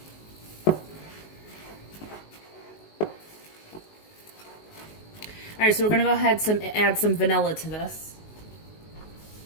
Alright, so we're going to go ahead and add some vanilla to this.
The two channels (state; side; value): late; right; 19 ms